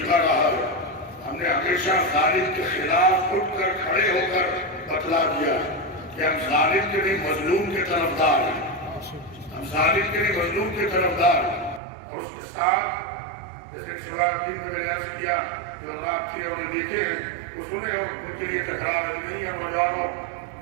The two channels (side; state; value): left; drops out; at 11.8 s